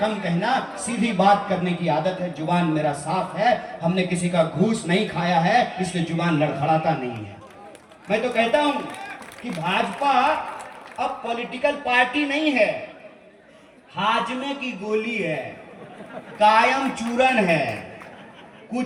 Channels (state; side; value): identical; both; correlation 1.00